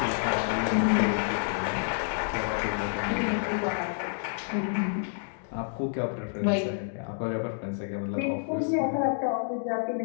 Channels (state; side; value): silent; right; digital silence